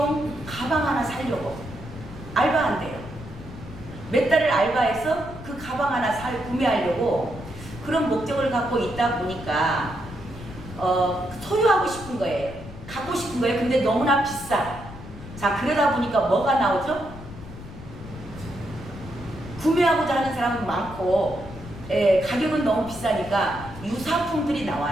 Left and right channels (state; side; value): noise; left; rumble, 14 dB below the sound